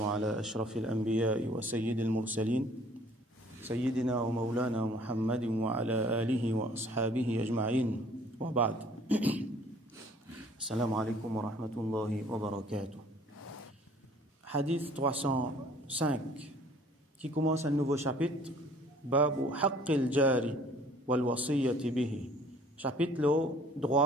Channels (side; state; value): both; normal; correlation 0.55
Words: أشرف الأنبياء وسيد المرسلين سيدنا ومولانا محمد وعلى آله وأصحابه أجمعين وبعد السلام عليكم ورحمة الله وبركاته. Hadith 305 qui commence un nouveau chapitre, Babu Haqqil Jari wal Wasiyyati bihi, chapitre le